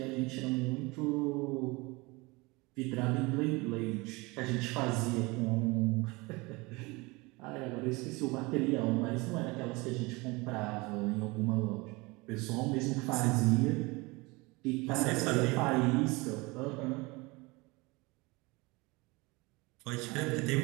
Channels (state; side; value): quieter; left; 24.6 dB